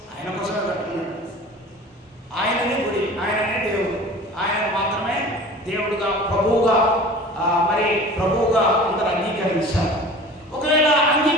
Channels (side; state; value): both; normal; correlation 0.41